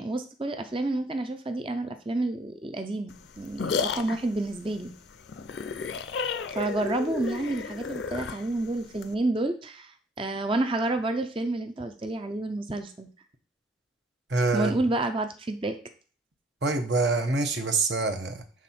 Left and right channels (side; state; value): both; normal; correlation 0.59